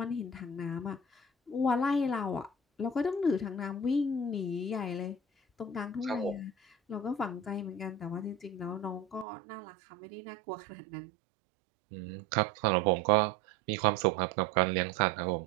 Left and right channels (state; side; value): drops out; left; at 9.2 s